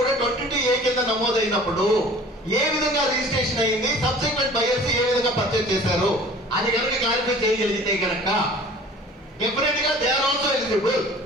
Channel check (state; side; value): normal; both; correlation 0.46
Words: 22A కింద నమోదైనప్పుడు ఏ విధంగా రిజిస్ట్రేషన్ అయింది, సబ్సిక్వెంట్ బయర్స్ ఏ విధంగా పర్చేజ్ చేశారు, అది కనుక క్లారిఫై చేయగలిగితే కనుక డెఫినెట్ గా they are also eligible.